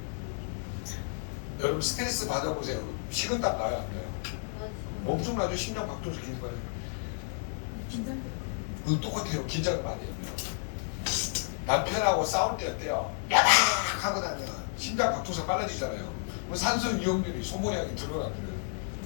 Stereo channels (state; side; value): silent; right; digital silence